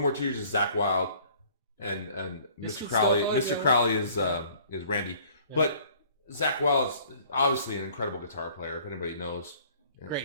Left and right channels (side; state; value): both; inverted; correlation -0.54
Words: Tears is Zakk Wylde, and Mr. Crowley. Mr. Crowley is Randy. Yeah. But Zakk Wylde is obviously an incredible guitar player. If anybody knows,